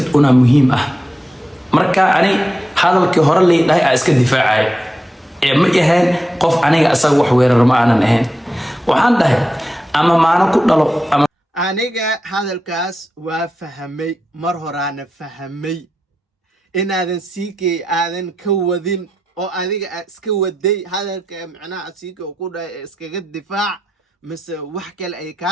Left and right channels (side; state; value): both; normal; correlation 0.89